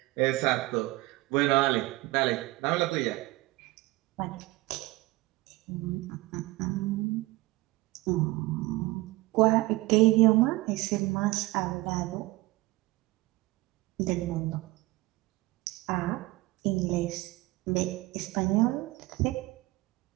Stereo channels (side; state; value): left; quieter; 20.1 dB